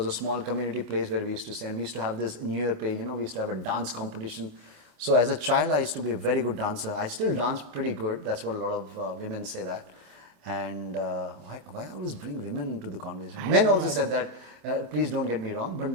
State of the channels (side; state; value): left; late; 28 ms